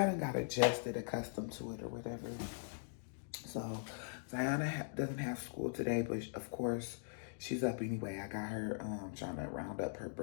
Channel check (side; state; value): right; silent; digital silence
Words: done got adjusted, accustomed to it or whatever. So Ziana doesn't have school today, but of course she's up anyway. I got her trying to round up her